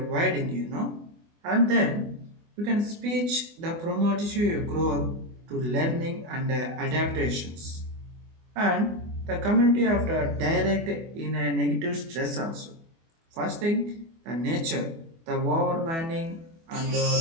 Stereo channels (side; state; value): left; late; 24 ms